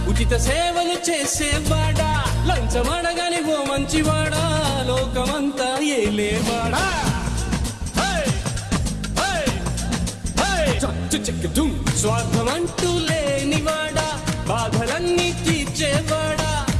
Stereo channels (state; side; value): identical; both; correlation 1.00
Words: ఉచిత సేవలు చేసేవాడా, లంచమడగని ఓ మంచివాడా, లోకమంతా ఏలేవాడా. స్వార్థమంటూ లేనివాడా, బాధలన్నీ తీర్చేవాడా,